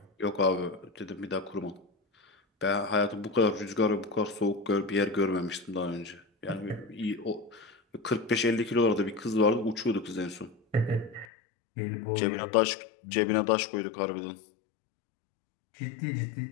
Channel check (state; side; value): drops out; right; at 11.2 s